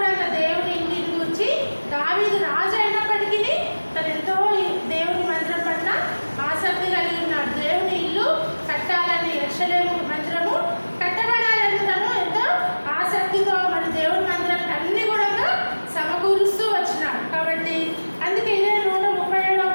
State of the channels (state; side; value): inverted; both; correlation -1.00